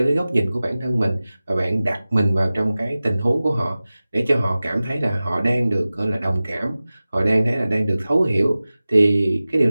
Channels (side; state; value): both; inverted; correlation -0.97